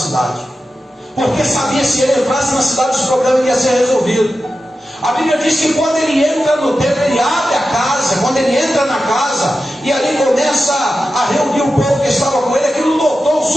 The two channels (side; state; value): both; normal; correlation 0.92